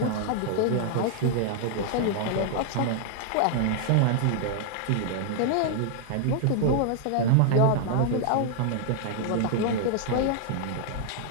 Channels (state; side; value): different; both; correlation 0.00